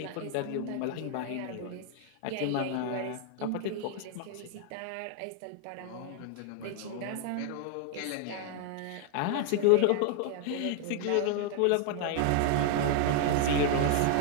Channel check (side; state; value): both; different; correlation 0.00